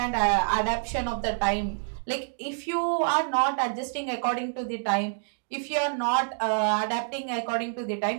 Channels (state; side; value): silent; left; digital silence